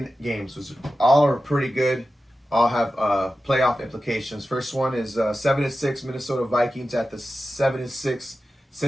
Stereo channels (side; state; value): both; normal; correlation 0.93